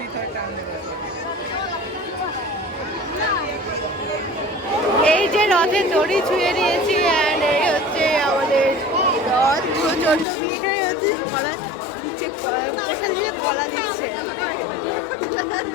এই যে রথের দড়ি ছুঁয়ে নিয়েছি। অ্যান্ড এই হচ্ছে আমাদের রথ। প্রচন্ড ভিড়। এখানে হচ্ছে কলা দিচ্ছে, প্রসাদ দিচ্ছে, কলা দিচ্ছে।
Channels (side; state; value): right; drops out; at 10.2 s